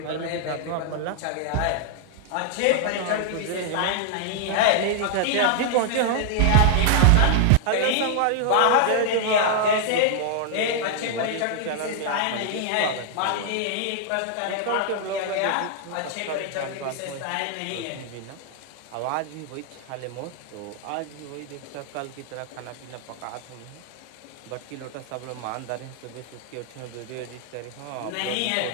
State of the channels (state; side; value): different; both; correlation -0.01